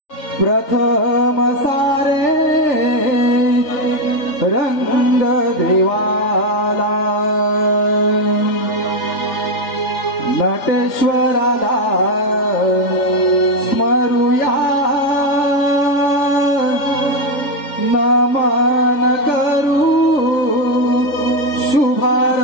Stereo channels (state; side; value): late; right; 3.4 ms